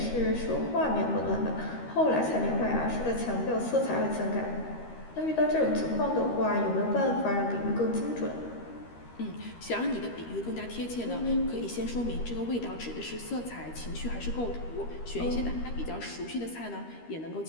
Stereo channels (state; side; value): late; right; 13 ms